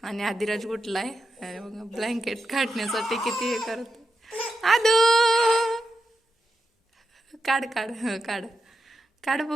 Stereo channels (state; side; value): normal; both; correlation 0.88